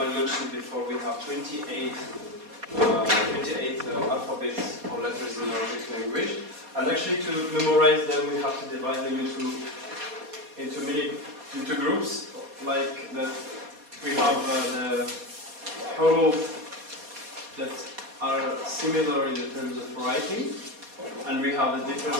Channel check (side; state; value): left; late; 4.2 ms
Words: before, we have 28 alphabets or letters in Arabic language. And actually, to memorize them, we have to divide them into groups. Like that, we have the huruf that are similar in the terms of writing, and we have the